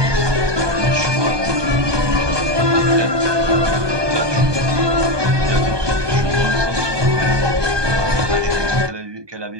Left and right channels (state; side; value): late; left; 1.2 ms